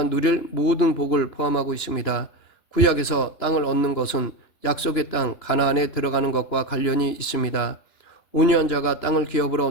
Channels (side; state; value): right; late; 3.0 ms